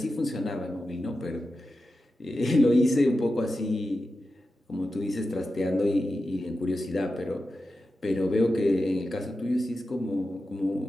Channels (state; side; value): normal; both; correlation 0.91